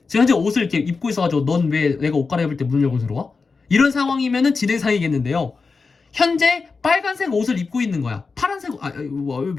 지금 현재 옷을 이렇게 입고 있어가지고 넌 왜 내가 옷 갈아입을 때 문을 열고 들어와? 이런 상황이면은 진행상이겠는데요. 현재 빨간색 옷을 입고 있는 거야. 파란색,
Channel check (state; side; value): quieter; right; 4.5 dB